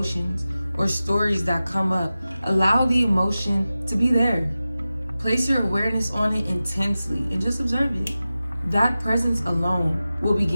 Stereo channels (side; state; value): both; inverted; correlation -0.95